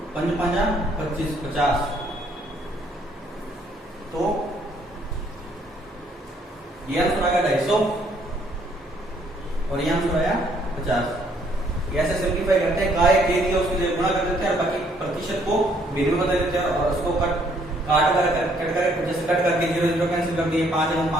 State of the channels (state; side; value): normal; both; correlation 0.66